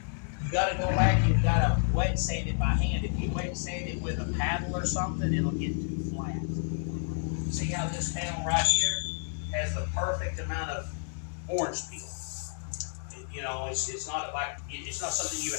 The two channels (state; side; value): silent; right; digital silence